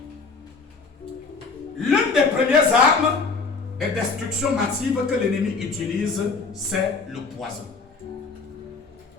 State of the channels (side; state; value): right; quieter; 4.4 dB